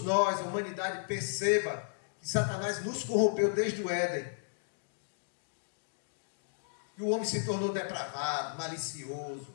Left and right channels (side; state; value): right; silent; digital silence